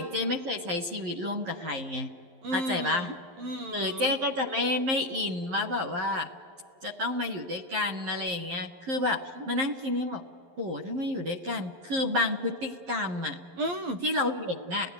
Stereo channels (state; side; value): late; left; 11 ms